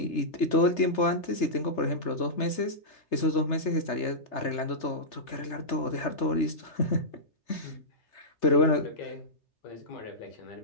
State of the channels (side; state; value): right; late; 3.3 ms